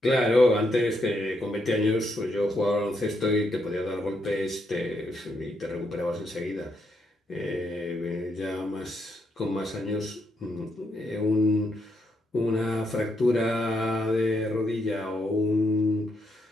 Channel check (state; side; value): normal; both; correlation 0.78